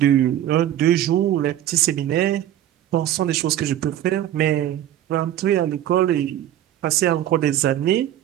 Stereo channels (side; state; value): left; quieter; 12.0 dB